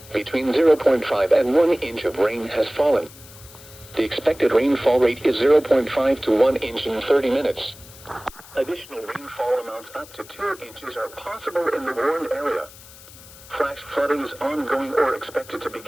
Between 0.5 and 1 inch of rain has fallen. The expected rainfall rate is 0.5 to 1 inch in 30 minutes. Additional rainfall amounts up to 2 inches are possible in the warned area. Flash flooding is ongoing or expected to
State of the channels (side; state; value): left; noise; hiss, 20 dB below the sound